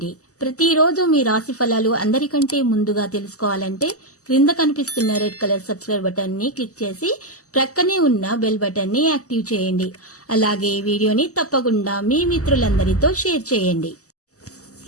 ప్రతిరోజు మీ రాశి ఫలాలు అందరికంటే ముందుగా తెలుసుకోవాలంటే క్రింద కనిపిస్తున్న రెడ్ కలర్ సబ్స్క్రైబ్ బటన్ ని క్లిక్ చేసి ప్రక్కనే ఉన్న బెల్ బటన్ ని యాక్టివ్ చేయండి. అలాగే ఈ వీడియోని తప్పకుండా మీ మిత్రులందరితో షేర్ చేయండి.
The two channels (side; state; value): right; late; 0.66 ms